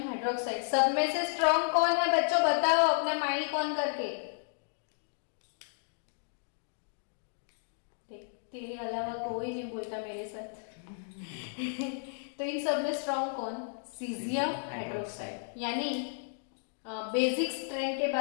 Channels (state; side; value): silent; right; digital silence